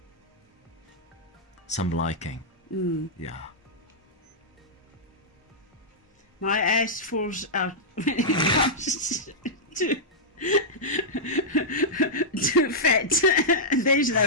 liking. Yeah. My ass falls out when it comes to fat. There's no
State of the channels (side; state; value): both; normal; correlation -0.10